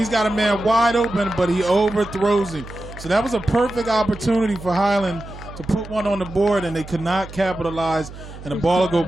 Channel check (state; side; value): noise; right; hum, 14 dB below the sound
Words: got a man wide open, but he overthrows him. So that was a perfect opportunity for Highland to put one on the board, and they could not capitalize. And the ball will go